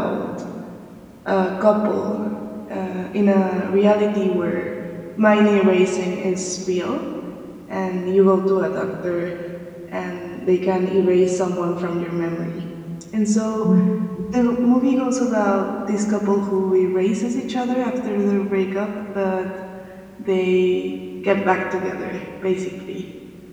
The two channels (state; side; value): identical; both; correlation 1.00